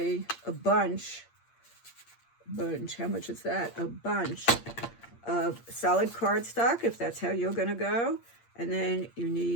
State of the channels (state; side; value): late; right; 8.6 ms